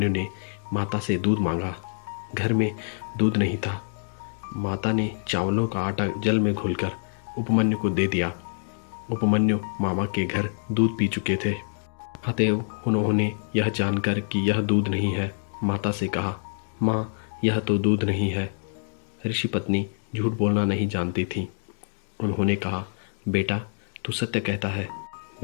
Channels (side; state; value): right; silent; digital silence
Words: ने माता से दूध मांगा। घर में दूध नहीं था। माता ने चावलों का आटा जल में घोलकर उपमन्यु को दे दिया। उपमन्यु मामा के घर दूध पी चुके थे। अतएव उन्होंने यह जानकर कि यह दूध नहीं है, माता से कहा, माँ, यह तो दूध नहीं है। ऋषि पत्नी झूठ बोलना नहीं जानती थी। उन्होंने कहा, बेटा, तू सत्य कहता है।